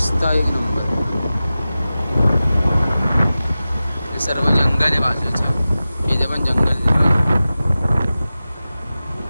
एक नंबर. हे सर्व जंगल आहे बाजूचं. इथे पण जंगल आहे.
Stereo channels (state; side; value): inverted; both; correlation -0.95